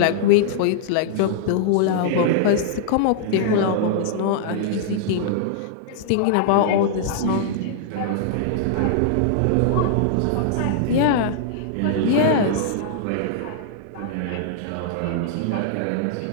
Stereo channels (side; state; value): both; different; correlation -0.01